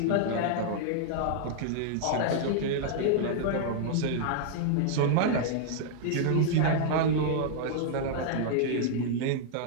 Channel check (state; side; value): different; both; correlation -0.01